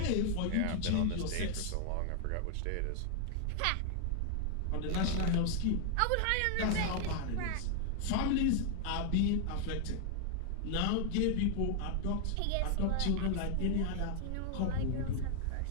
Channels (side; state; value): both; different; correlation 0.00